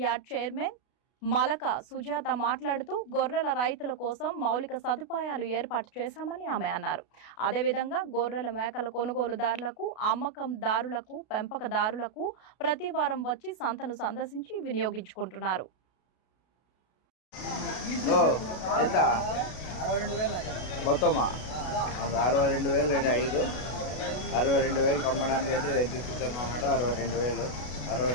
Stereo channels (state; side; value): late; right; 32 ms